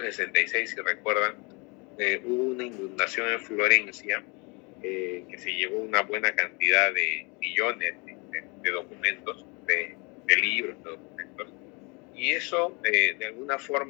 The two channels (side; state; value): right; quieter; 29.6 dB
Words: si recuerdan, hubo una inundación en Florencia, que se llevó una buena cantidad de millones de documentos, de libros, de documentos, y eso de alguna